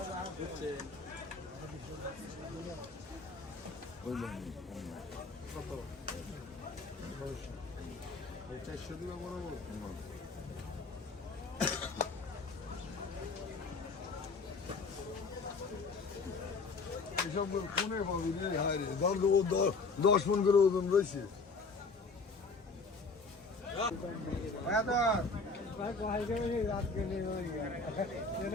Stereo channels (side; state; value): right; quieter; 4.0 dB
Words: বুঝছে কত 400 দিবা বরাবর এসব কোনে পাবি রে হায় রে দাম তো 10 মন করে ওজন রয়েছে